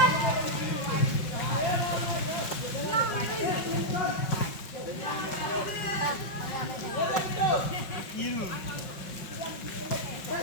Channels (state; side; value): late; right; 5.8 ms